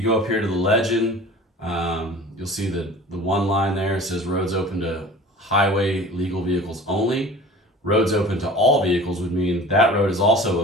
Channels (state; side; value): normal; both; correlation 0.42